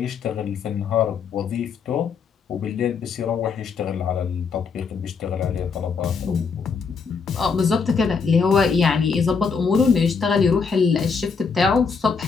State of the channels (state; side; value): quieter; right; 5.4 dB